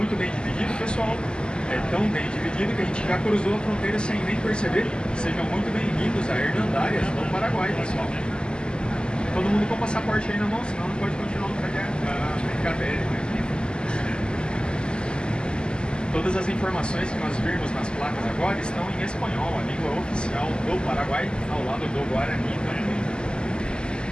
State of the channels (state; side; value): late; right; 0.048 ms